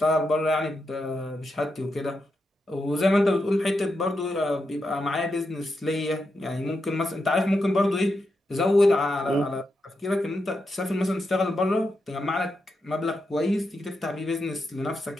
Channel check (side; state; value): both; normal; correlation 0.86